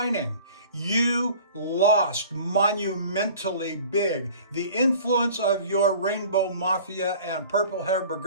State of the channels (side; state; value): both; inverted; correlation -0.46